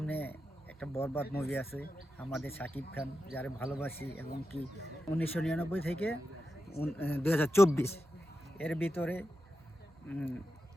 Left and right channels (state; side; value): normal; both; correlation 0.89